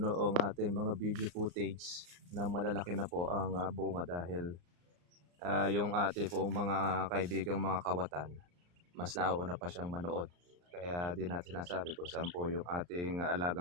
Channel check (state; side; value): late; left; 34 ms